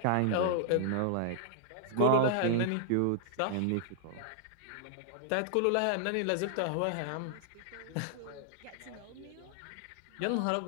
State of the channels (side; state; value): both; different; correlation -0.01